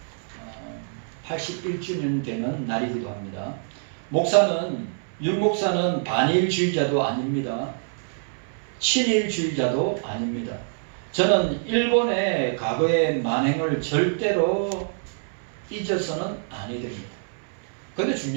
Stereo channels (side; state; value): left; silent; 61 dB below the other